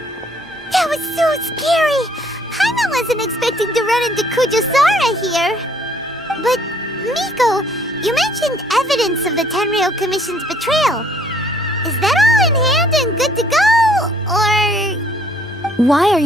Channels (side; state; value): both; normal; correlation 0.63